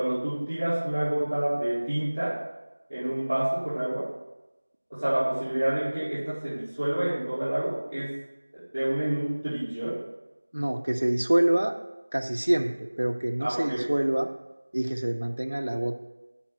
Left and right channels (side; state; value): both; inverted; correlation -1.00